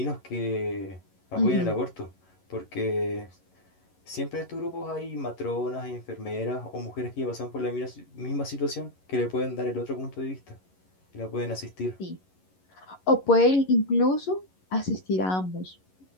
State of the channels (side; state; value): right; late; 11 ms